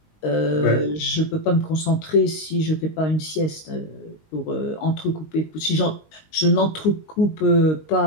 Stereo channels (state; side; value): late; right; 19 ms